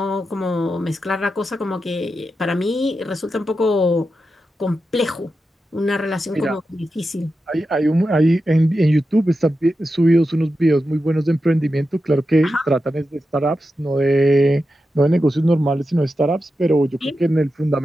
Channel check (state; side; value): normal; both; correlation 0.90